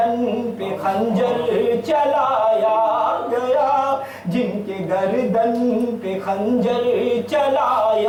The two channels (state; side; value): identical; both; correlation 1.00